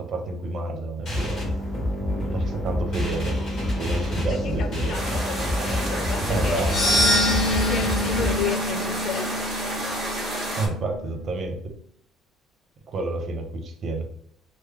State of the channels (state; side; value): normal; both; correlation 0.57